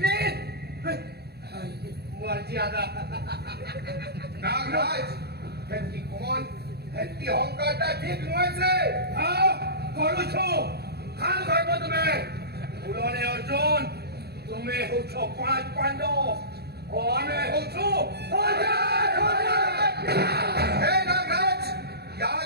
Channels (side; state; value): left; late; 0.47 ms